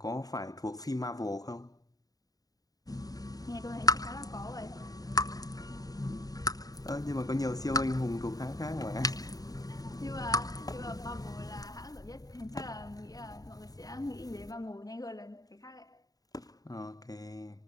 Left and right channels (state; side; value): late; right; 0.18 ms